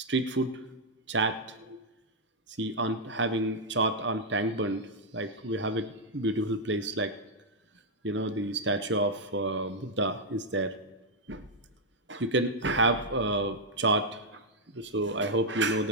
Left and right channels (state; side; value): normal; both; correlation -0.02